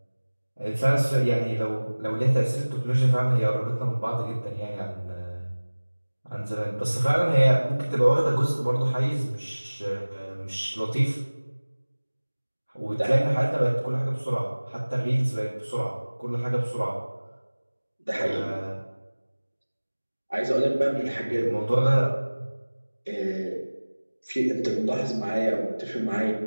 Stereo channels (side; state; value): both; inverted; correlation -1.00